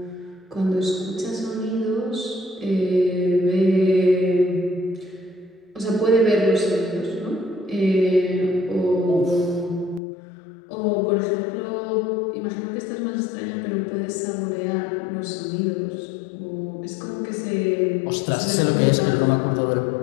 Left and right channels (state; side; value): drops out; right; at 10.0 s